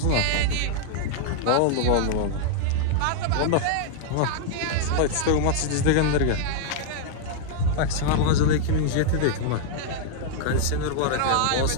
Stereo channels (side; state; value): both; different; correlation -0.01